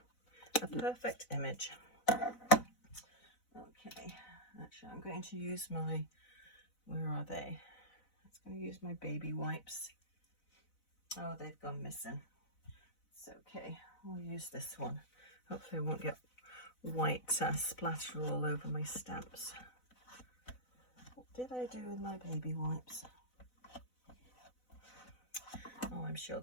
A perfect image. Okay, actually I'm going to use my, where are they? I'm going to use my baby wipes. Oh, they've gone missing. It's okay, we'll use this one. Hopefully I won't get white splatter all over my stamps. What did I do with my baby wipes? Oh, I'm sure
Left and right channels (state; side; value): late; right; 4.0 ms